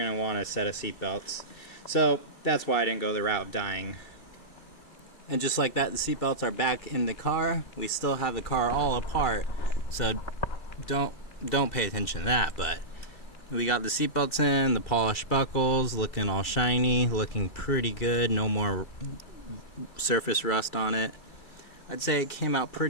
to want a set of seat belts. So that's why I didn't go the route of dyeing. And just like that, the seat belts are back in the car. We still have the car all apart, so don't pay attention to that. But we got the seat belts in, the polished buckles looking all shiny, looking pretty good. No more surface rust on it. I'd say it came out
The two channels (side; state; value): right; late; 2.6 ms